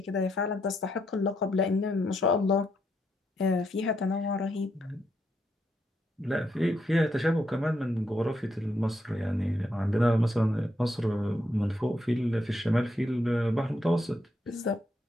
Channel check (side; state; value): both; normal; correlation 0.78